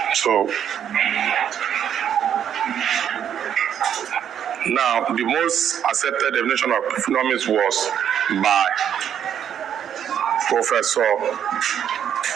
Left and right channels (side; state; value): left; quieter; 9.2 dB